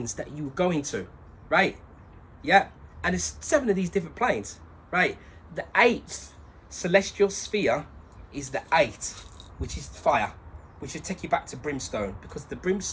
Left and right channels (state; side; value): identical; both; correlation 1.00